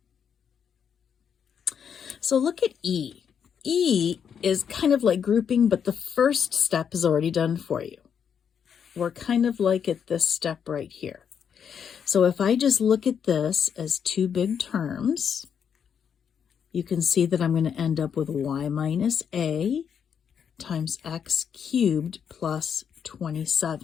So look at E. E is kind of like grouping, but the first step is already done for you. We're kind of like at this step right here. So if I just look at this as 2 big terms, you can see that I'm going to end up with y minus a times x cubed plus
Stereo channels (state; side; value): quieter; right; 7.6 dB